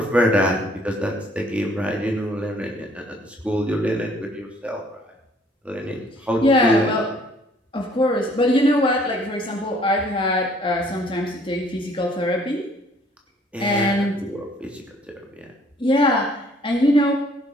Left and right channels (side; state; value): both; normal; correlation 0.60